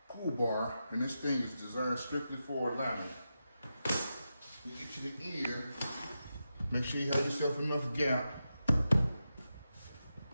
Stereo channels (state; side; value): inverted; both; correlation -0.89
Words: pull bar, and this thing is designed strictly for alignment. You get to the end, make sure you have yourself enough gap.